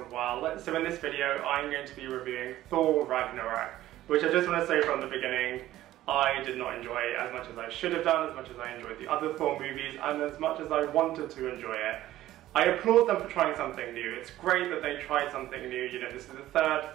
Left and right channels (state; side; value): quieter; left; 14.4 dB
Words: well. So in this video I'm going to be reviewing Thor Ragnarok, which I just want to say from the beginning, I did not enjoy it as much as I should have done, as much as I enjoyed the other Thor movies, and as much as I wanted to enjoy it. I applaud them for trying something new. It's great that they tried something new. You know, this is the third